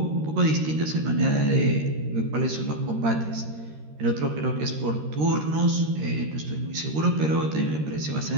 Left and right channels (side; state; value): left; late; 13 ms